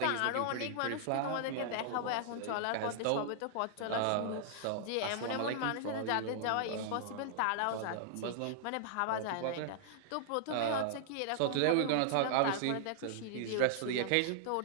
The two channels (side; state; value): both; different; correlation -0.01